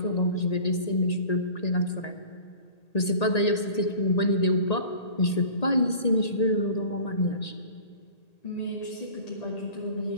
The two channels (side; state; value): right; late; 1.8 ms